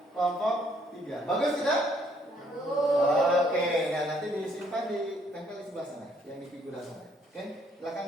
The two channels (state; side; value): normal; both; correlation 0.67